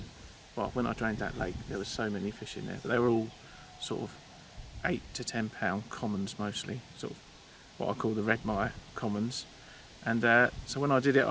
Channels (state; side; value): identical; both; correlation 1.00